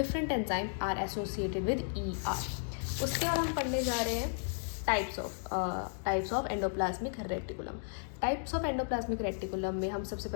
enzyme are associated with ER। उसके बाद हम पढ़ने जा रहे हैं types of endoplasmic reticulum. Types of endoplasmic reticulum में हम सबसे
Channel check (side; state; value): right; silent; digital silence